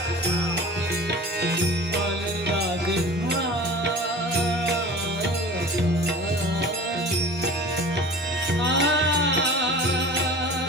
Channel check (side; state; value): both; normal; correlation 0.40